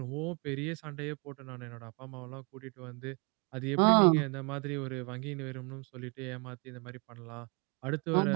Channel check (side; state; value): left; quieter; 32.4 dB